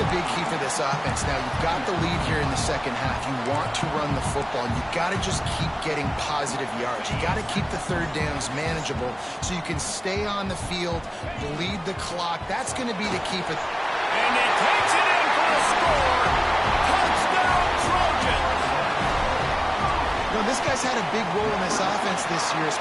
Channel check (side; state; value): both; identical; correlation 1.00